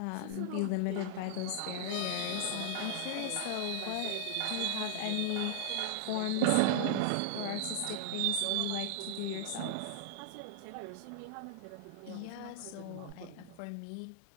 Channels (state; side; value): different; both; correlation -0.01